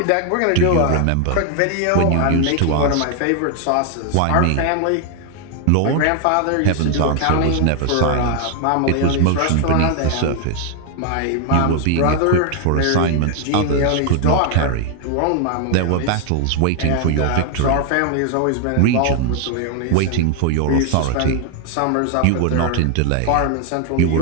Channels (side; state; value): both; different; correlation 0.00